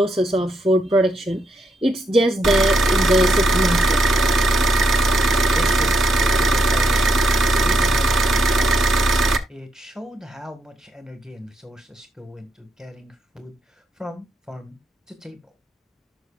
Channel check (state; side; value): normal; both; correlation 0.77